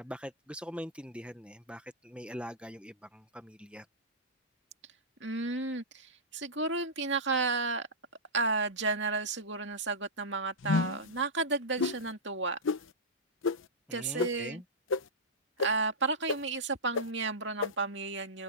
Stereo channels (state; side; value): normal; both; correlation -0.13